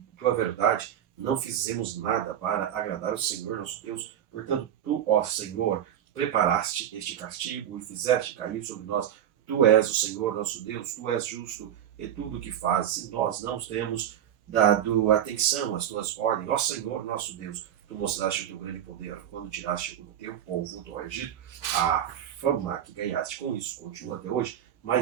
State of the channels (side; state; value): left; quieter; 10.3 dB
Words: verdade. Não fizemos nada para agradar o Senhor nosso Deus. Portanto, tu, ó Senhor, preparaste este castigo e fizeste cair sobre nós. Tu és o Senhor nosso Deus, tu és justo em tudo o que fazes, e nós não temos dado atenção às tuas ordens. Ó Senhor nosso Deus, tu mostraste o teu grande poder quando tiraste o teu povo do Egito. A fama que ganhaste com isso continua até hoje,